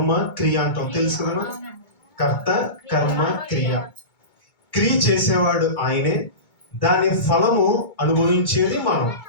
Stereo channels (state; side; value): late; right; 2.2 ms